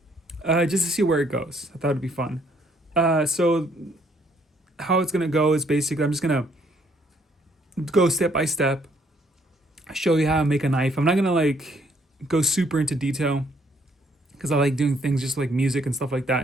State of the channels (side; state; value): both; normal; correlation 0.67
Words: just to see where it goes. I thought it'd be fun. So how it's gonna go is basically I'm just gonna go step by step, show you how to make a knife. I'm not gonna like go super into detail because I like doing things just like music and stuff like that